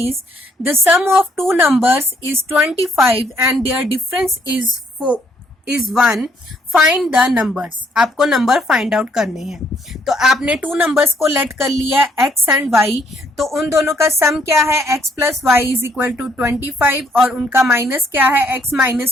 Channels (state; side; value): normal; both; correlation 0.68